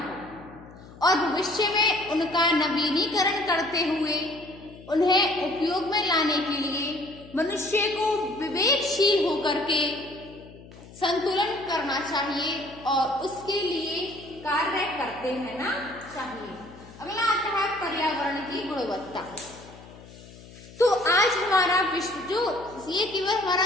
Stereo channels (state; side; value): noise; left; hum, 19 dB below the sound